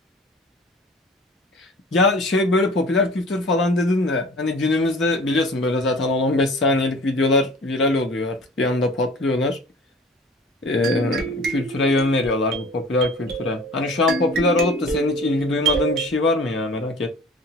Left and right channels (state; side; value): normal; both; correlation 0.45